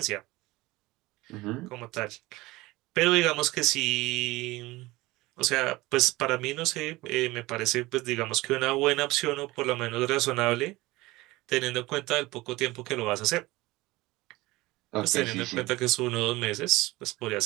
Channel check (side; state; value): left; quieter; 20.1 dB